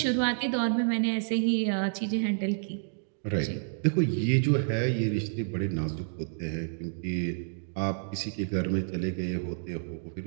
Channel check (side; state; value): left; silent; digital silence